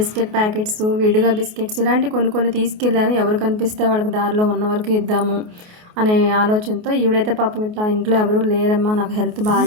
packets, విడిగా బిస్కెట్స్ ఇలాంటి కొన్ని తీసుకెళ్ళాను. ఎవరు కనిపిస్తే వాళ్ళకి దారిలో ఉన్న వరకు ఇద్దాము అనే ఆలోచనతో. ఈవిడైతే పాపం ఇట్లా ఇంట్లో ఎవరు లేరమ్మా, నాకు హెల్త్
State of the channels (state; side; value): late; left; 28 ms